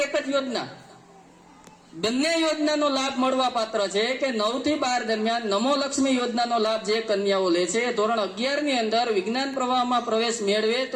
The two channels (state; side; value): identical; both; correlation 1.00